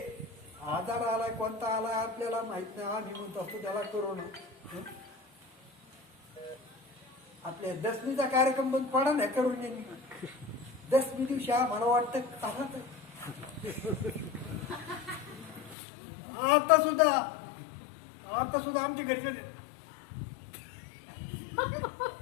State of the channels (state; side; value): drops out; right; at 15.8 s